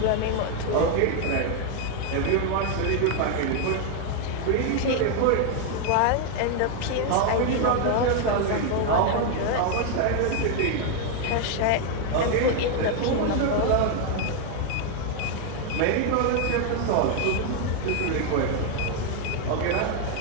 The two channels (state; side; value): different; both; correlation 0.00